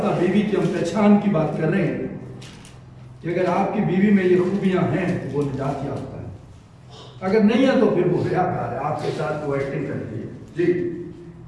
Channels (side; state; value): both; identical; correlation 1.00